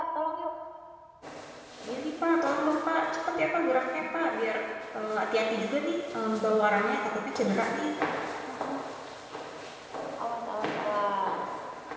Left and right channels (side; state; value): both; identical; correlation 1.00